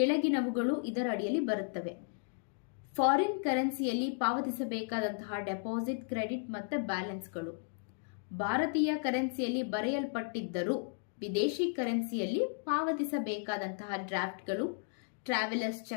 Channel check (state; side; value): silent; right; digital silence